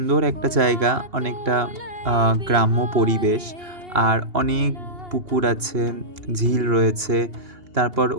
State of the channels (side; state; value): left; late; 2.8 ms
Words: একটা জায়গা, অনেকটা গ্রাম্য পরিবেশ। আর অনেক পুকুর আছে, ঝিল রয়েছে। তারপর